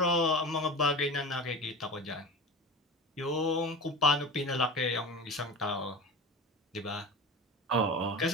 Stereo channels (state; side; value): normal; both; correlation 0.30